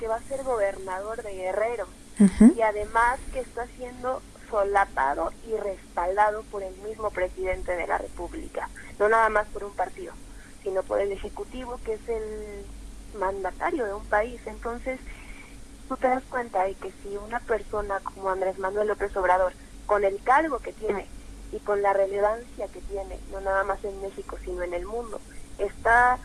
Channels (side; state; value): both; identical; correlation 1.00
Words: va a ser gobernador de Guerrero, y además que está siendo solapado y respaldado por el mismo presidente de la República, no nada más por un partido, sino por el Ejecutivo, que es el mandatario de un país. Entonces, tú te das cuenta de que si una persona como Andrés Manuel López Obrador, con el cargo que tiene y con la relevancia que tiene, no nada más en México, sino en el mundo, está